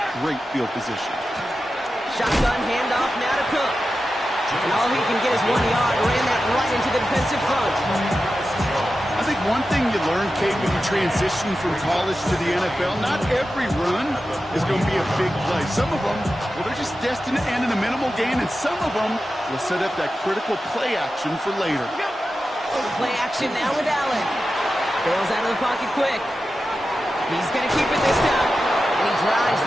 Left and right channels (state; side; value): normal; both; correlation 0.92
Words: great field position. Shotgun handoff now to Cook. And all he can get is 1 yard. Ran that right into the defensive front. I think one thing you learn, Kate, when you transition from college to the NFL, not every run is going to be a big play. Some of them, well, they're just destined to end in a minimal gain, and some of them will set up that critical play action for later. Play action now with Allen. Bails out of the pocket quick. He's going to keep it this time. And And he drives